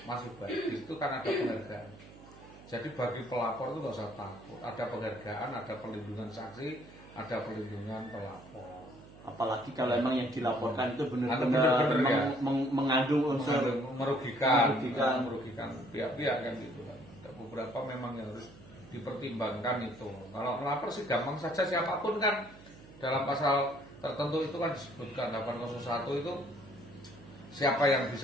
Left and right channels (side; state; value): right; noise; hum, 20 dB below the sound